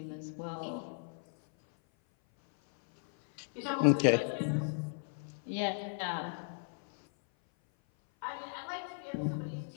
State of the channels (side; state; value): right; silent; 54 dB below the other